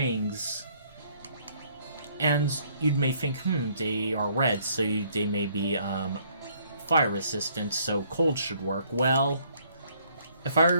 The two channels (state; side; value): inverted; both; correlation -0.64